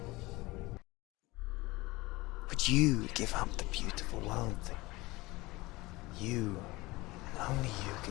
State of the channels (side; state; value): right; quieter; 21.2 dB